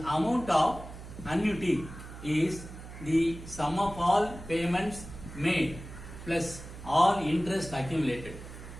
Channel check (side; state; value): right; noise; hum, 13 dB below the sound